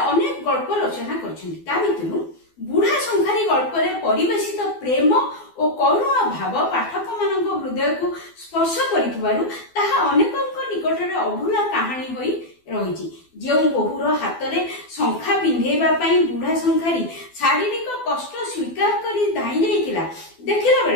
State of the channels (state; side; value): late; right; 12 ms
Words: गल्प रचना करचंदी ता भितरु बुढ़ा संखारी गल्प रे परिवेशित प्रेम और करुण भाव पाठक मानक हृदय को स्पर्श करिथबारु ताहा अनेकक निकट रे अभूला कहानी होई रहिछि। जे बहुर हाथ में शंखा पिंधेबा पई बुढ़ा संखारी शारीरिक कष्ट स्वीकार करी दाई जाइतिला देखिला